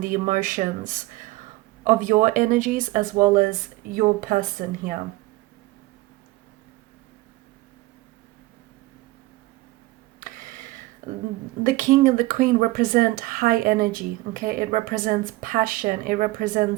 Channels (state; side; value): quieter; left; 19.6 dB